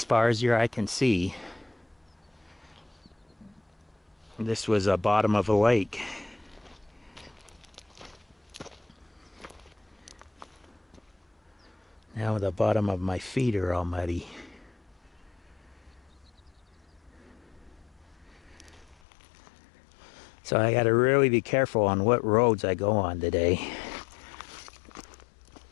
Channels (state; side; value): drops out; right; at 18.9 s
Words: far as your eye can see, this was a bottom of a lake. Now the bottom of my feet are all muddy. So I gotta really be careful on what roads I go on today,